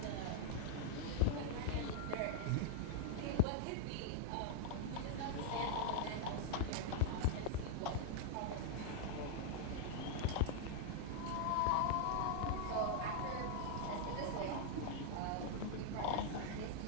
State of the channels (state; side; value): different; both; correlation -0.01